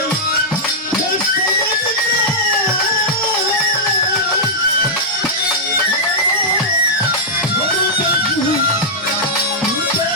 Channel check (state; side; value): normal; both; correlation -0.10